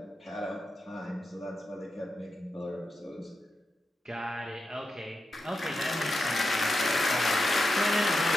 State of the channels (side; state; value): both; normal; correlation 0.89